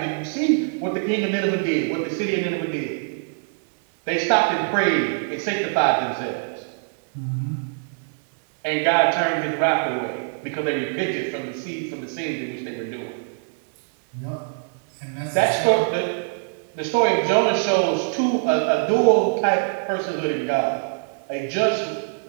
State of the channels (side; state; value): left; silent; digital silence